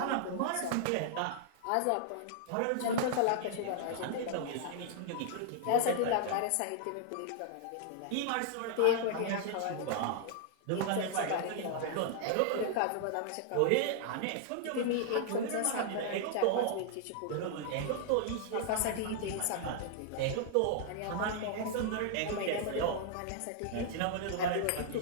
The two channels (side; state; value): both; different; correlation -0.01